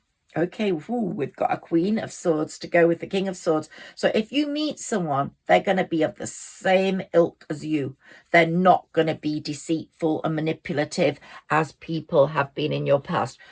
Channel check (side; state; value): both; identical; correlation 1.00